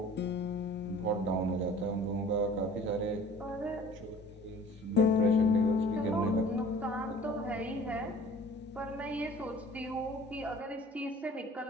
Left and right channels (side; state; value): both; normal; correlation 0.48